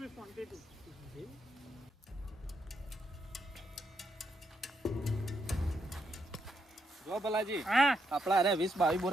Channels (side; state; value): both; normal; correlation 0.79